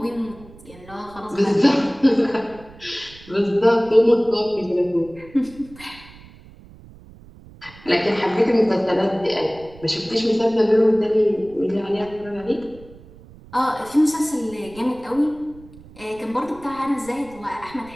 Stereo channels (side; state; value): right; noise; rumble, 21 dB below the sound